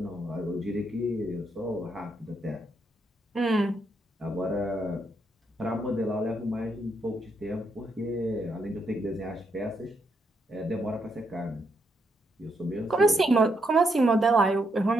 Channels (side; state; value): both; normal; correlation 0.78